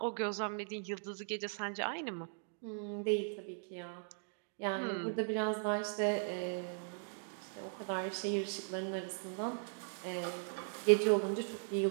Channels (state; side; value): silent; left; digital silence